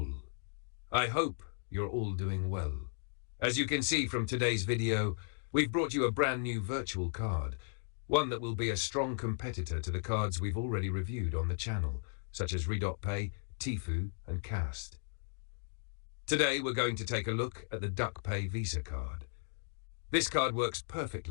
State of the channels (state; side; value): silent; right; digital silence